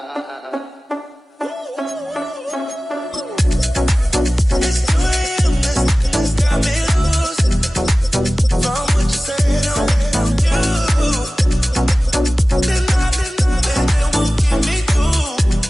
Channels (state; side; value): normal; both; correlation 0.97